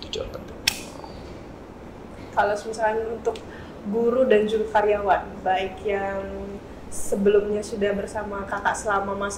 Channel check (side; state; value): both; identical; correlation 1.00